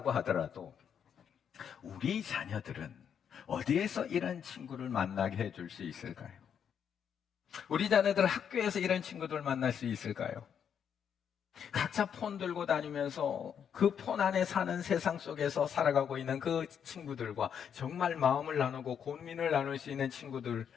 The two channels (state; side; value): quieter; right; 8.0 dB